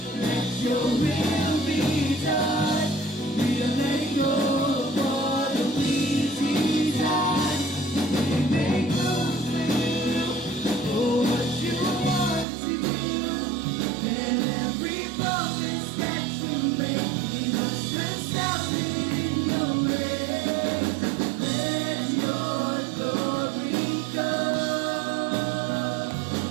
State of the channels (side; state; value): left; drops out; at 12.5 s